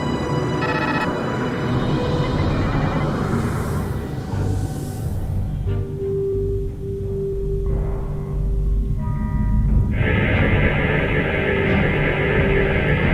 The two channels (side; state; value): both; identical; correlation 1.00